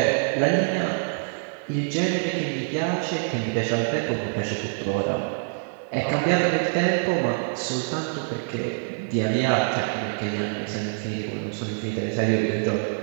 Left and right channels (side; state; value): left; silent; 58 dB below the other